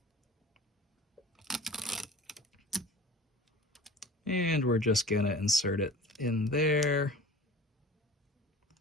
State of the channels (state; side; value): normal; both; correlation 0.42